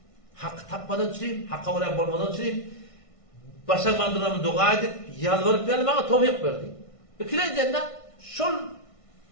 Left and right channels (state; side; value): late; right; 1.5 ms